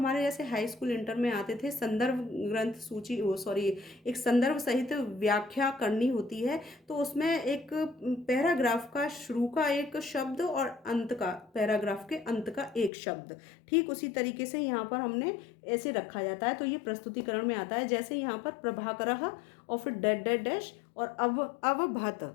जैसे हाई स्कूल इंटर में आते थे, संदर्भ ग्रंथ सूची, एक संदर्भ सहित व्याख्या करनी होती है। तो उसमें एक पैराग्राफ का शुरू का एक शब्द और अंत का, पैराग्राफ के अंत का एक शब्द, ठीक उसी तरीके से यहाँ पर हमने ऐसे रखा जाता है। तो ये प्रस्तुतिकरण में आता है, जैसे यहाँ पर प्रभाकरः और फिर डैश डैश डैश और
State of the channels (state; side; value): drops out; right; at 12.9 s